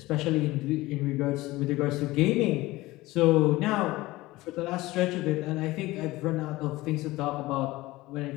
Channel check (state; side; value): quieter; right; 19.2 dB